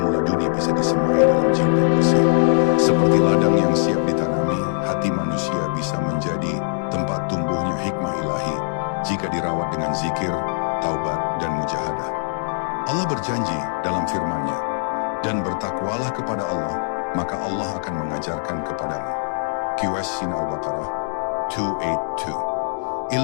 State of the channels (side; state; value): right; silent; digital silence